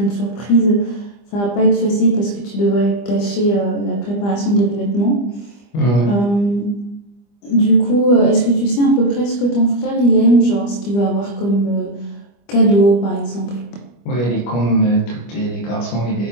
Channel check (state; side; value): late; right; 25 ms